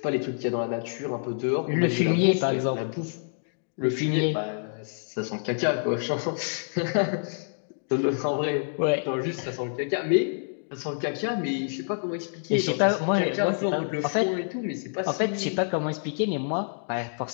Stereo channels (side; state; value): right; silent; digital silence